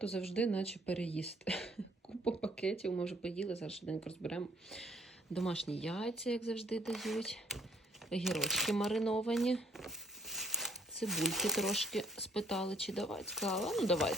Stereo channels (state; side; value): normal; both; correlation 0.63